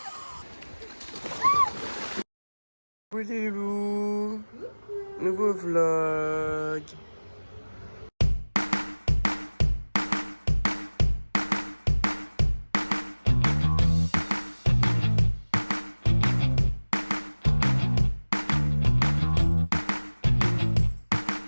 Coucou les loups. Nouveau vlog.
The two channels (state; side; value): inverted; both; correlation -1.00